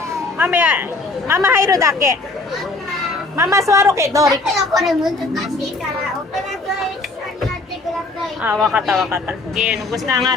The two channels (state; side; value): quieter; right; 3.2 dB